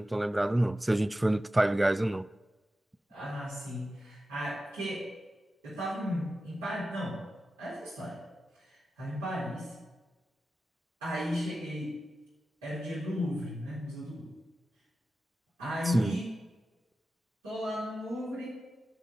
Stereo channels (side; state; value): both; normal; correlation 0.93